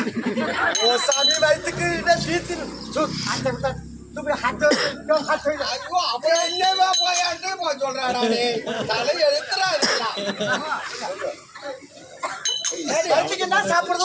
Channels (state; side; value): identical; both; correlation 1.00